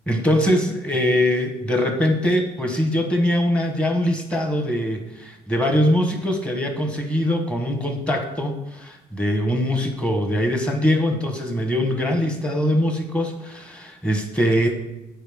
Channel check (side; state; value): both; normal; correlation 0.75